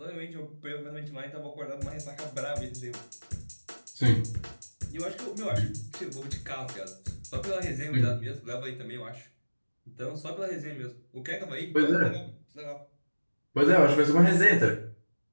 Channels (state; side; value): inverted; both; correlation -1.00